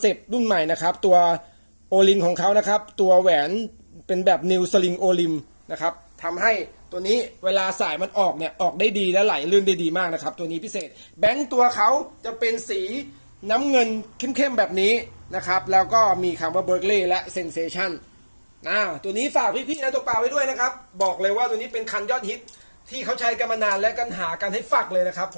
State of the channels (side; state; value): both; inverted; correlation -1.00